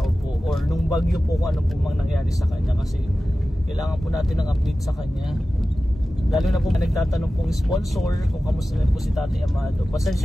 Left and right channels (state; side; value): normal; both; correlation 0.95